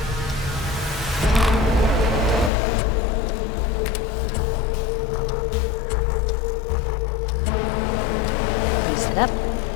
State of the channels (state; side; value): drops out; right; at 2.5 s